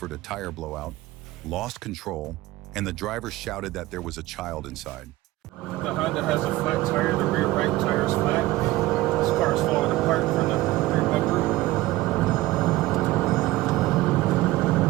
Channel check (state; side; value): quieter; left; 17.6 dB